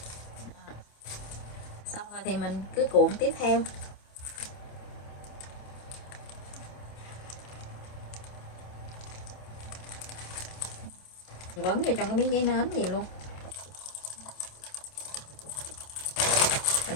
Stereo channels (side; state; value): right; late; 27 ms